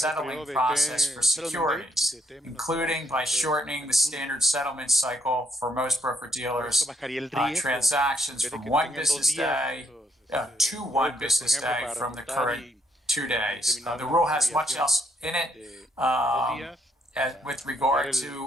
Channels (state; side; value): normal; both; correlation 0.74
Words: process for securities, including by shortening the standard settlement cycle for most broker-dealers, transactions from 1 business day to 1 business day from the current 2 days. The rule has much else in it. With regard to